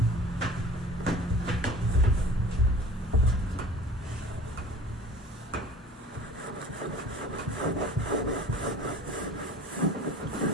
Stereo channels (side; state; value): both; normal; correlation 0.44